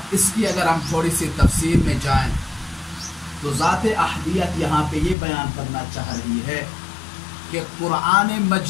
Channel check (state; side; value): drops out; right; at 5.2 s